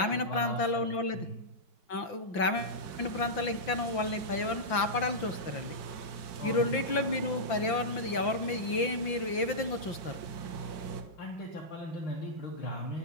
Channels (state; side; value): late; right; 5.9 ms